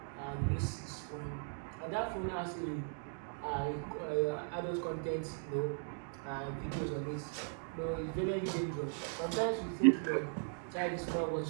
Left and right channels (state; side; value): silent; left; 52 dB below the other